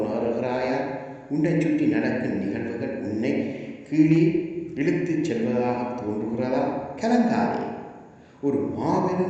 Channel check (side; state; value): both; identical; correlation 1.00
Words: உன்னை சுற்றி நடக்கும் நிகழ்வுகள் உன்னை கீழே இழுத்துச் செல்வதாக தோன்றுகிறதா? கலங்காதே. ஒரு